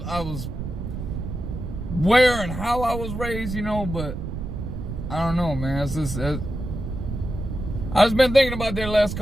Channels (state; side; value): noise; right; rumble, 6 dB below the sound